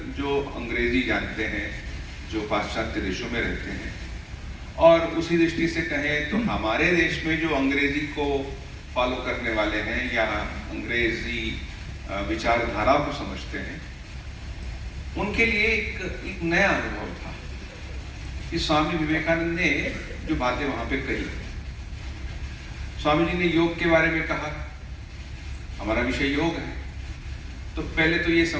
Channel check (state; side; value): identical; both; correlation 1.00